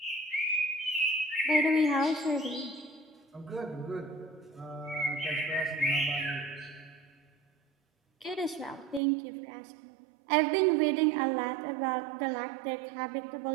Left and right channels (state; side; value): drops out; left; at 9.0 s